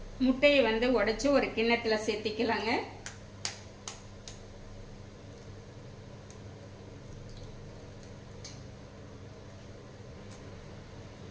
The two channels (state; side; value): identical; both; correlation 1.00